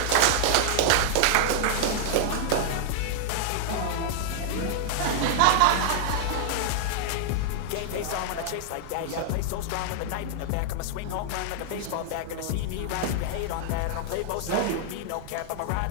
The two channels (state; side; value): different; both; correlation -0.01